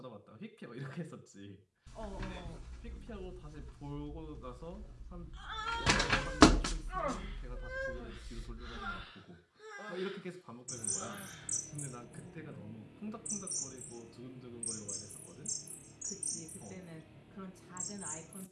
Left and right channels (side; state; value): both; identical; correlation 1.00